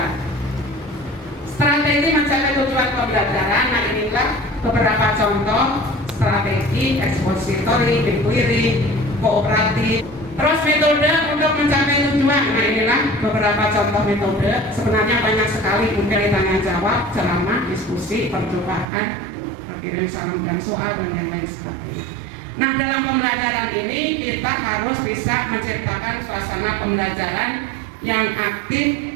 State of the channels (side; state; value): left; drops out; at 18.9 s